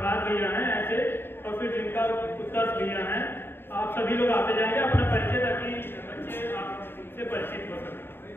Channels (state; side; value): late; right; 0.11 ms